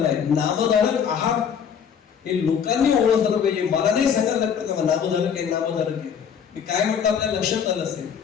नामधारक आहात हे लोकांनी ओळखलं पाहिजे. मला नाही सांगायला लागतं का नामधारक आहे. मी काय म्हटलं आपल्या लक्षात आलं असेल,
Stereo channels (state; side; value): quieter; right; 7.5 dB